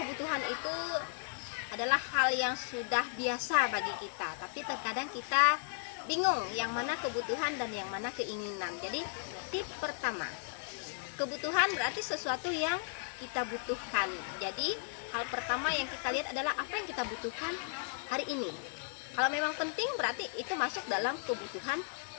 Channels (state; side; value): silent; right; digital silence